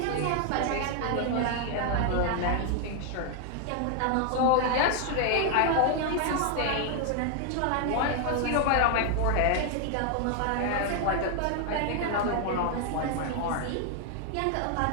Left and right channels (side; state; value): both; different; correlation 0.00